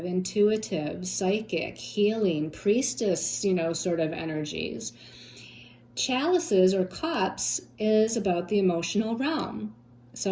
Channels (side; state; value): both; identical; correlation 1.00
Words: intuitive, psychic, healing, priestess, sort of energies. Chalices or cups is about the emotional realm.